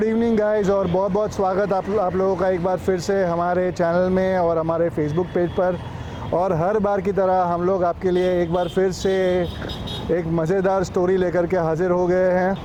evening guys, और बहुत बहुत स्वागत आप लोगों का एक बार फिर से हमारे चैनल में और हमारे फेसबुक पेज पर। और हर बार की तरह हम लोग आपके लिए एक बार फिर से एक मज़ेदार स्टोरी लेकर के हाज़िर हो गए हैं।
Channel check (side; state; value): both; identical; correlation 1.00